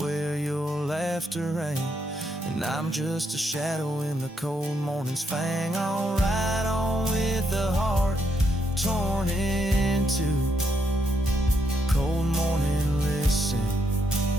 your laughter rang, and I'm just a shadow in the cold morning's fang. I'll ride on with a heart torn in two. Cold morning, listen,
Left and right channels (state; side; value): normal; both; correlation 0.77